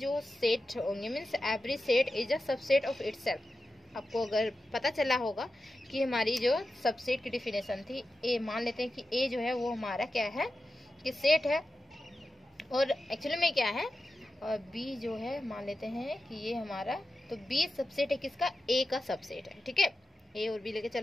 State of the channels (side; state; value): both; normal; correlation 0.92